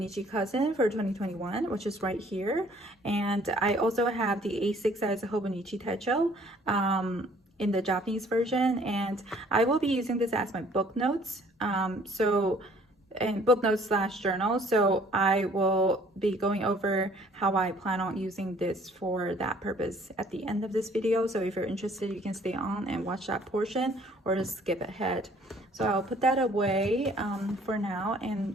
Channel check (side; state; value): both; normal; correlation 0.58